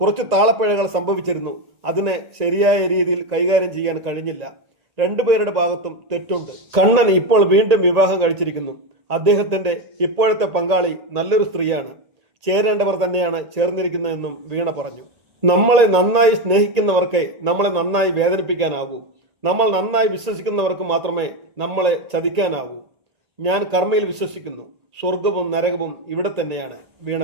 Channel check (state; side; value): late; left; 1.8 ms